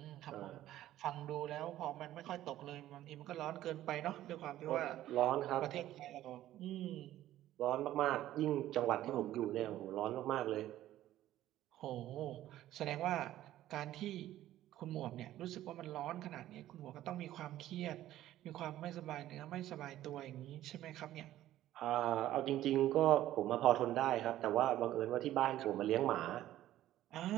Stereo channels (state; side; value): quieter; left; 13.6 dB